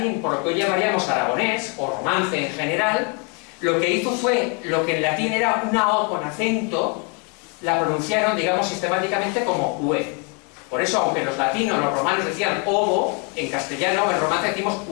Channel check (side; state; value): right; quieter; 35.5 dB